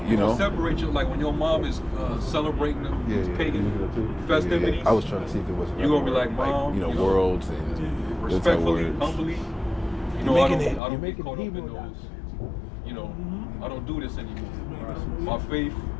separate you, like when your mom is celebrating these pagan festivities. I was trying to see if there was. You're going to be like, Mom, worlds and respectfully, humbly. I don't get caught up in those. I don't do this anymore. My faith,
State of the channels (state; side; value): drops out; right; at 10.8 s